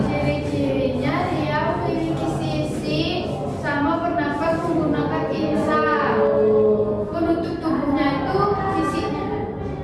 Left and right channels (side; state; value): both; identical; correlation 1.00